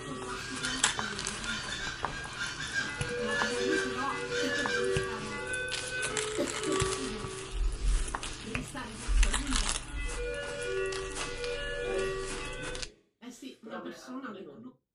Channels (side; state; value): both; identical; correlation 1.00